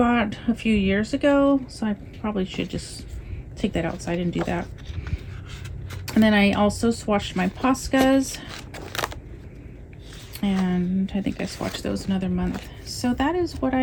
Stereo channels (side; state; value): both; identical; correlation 1.00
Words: a few years ago, so I probably should just take that outside and do that. And then I also swatched my Poscas, and I think I swatched those another month. So that is what